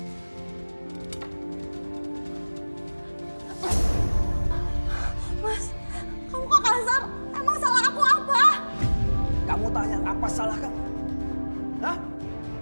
Mas, kamu kok kasar? Emang salah aku apa? Kamu tanya apa salah kamu? Hah?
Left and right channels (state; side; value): inverted; both; correlation -1.00